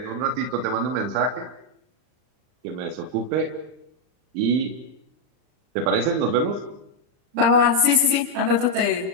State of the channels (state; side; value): late; left; 39 ms